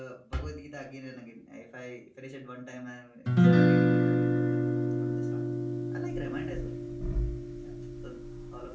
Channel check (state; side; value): identical; both; correlation 1.00